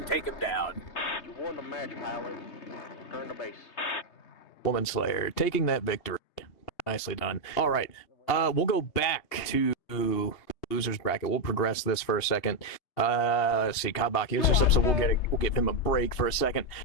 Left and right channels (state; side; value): late; right; 2.7 ms